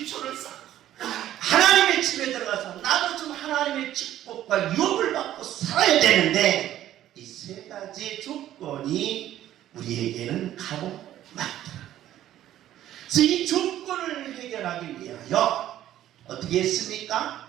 쌓고, 하나님의 집에 들어가서 나도 좀 하나님의 축복과 유업을 받고 살아야 되는데 이 세 가지 조건이 우리에게는 가고 맞더라. 그래서 이 조건을 해결하기 위하여 어떻게 했습니까?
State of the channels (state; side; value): quieter; left; 12.6 dB